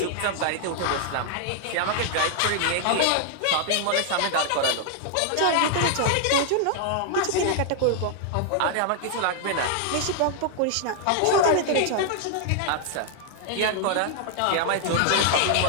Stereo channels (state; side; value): different; both; correlation 0.00